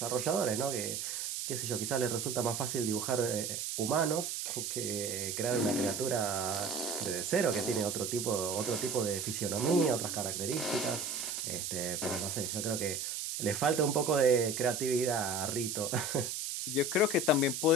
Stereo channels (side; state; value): right; noise; hiss, 3 dB below the sound